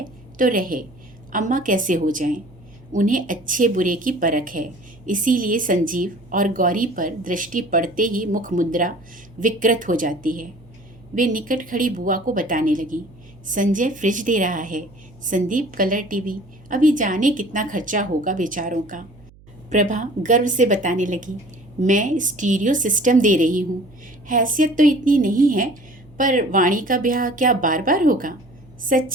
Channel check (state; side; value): noise; right; hum, 25 dB below the sound